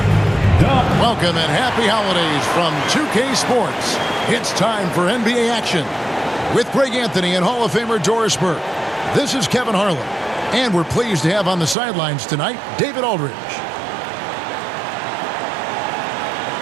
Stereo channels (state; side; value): drops out; left; at 11.8 s